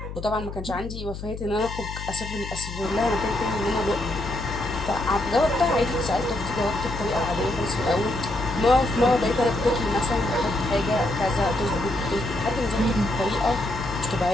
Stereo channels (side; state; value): left; noise; hum, 9 dB below the sound